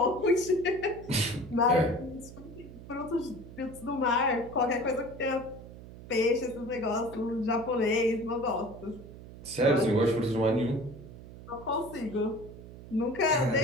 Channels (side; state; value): right; noise; hum, 16 dB below the sound